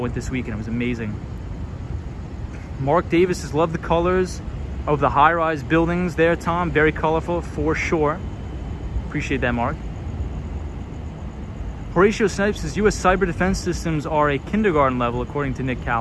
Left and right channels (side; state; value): both; identical; correlation 1.00